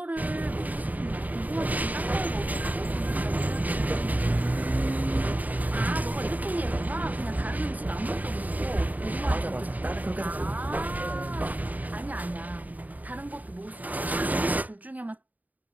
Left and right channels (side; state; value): left; late; 0.078 ms